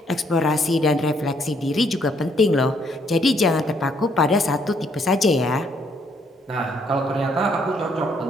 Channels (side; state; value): both; normal; correlation 0.69